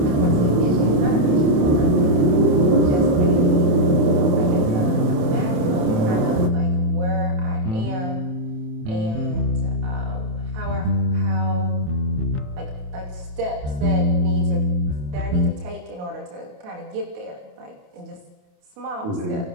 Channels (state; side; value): late; left; 28 ms